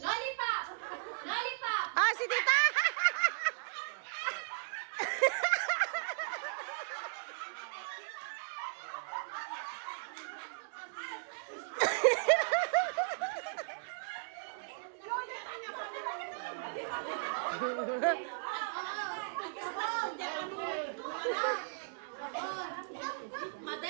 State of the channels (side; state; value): left; silent; digital silence